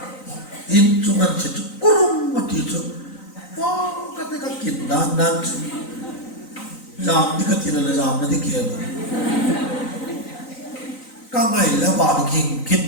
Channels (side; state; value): right; late; 3.9 ms